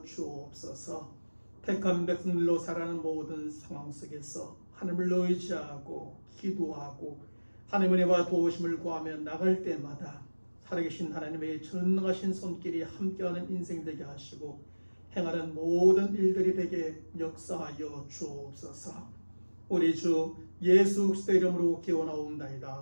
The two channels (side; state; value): both; inverted; correlation -1.00